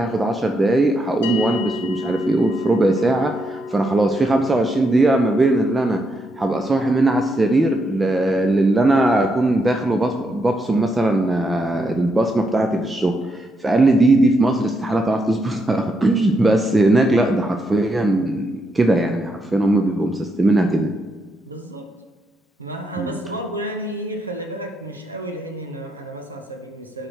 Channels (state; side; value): normal; both; correlation 0.80